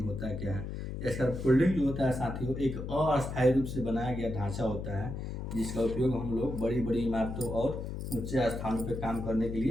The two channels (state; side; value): noise; left; hum, 6 dB below the sound